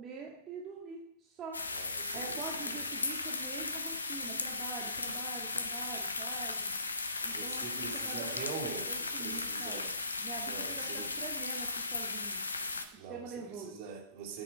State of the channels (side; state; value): both; inverted; correlation -0.60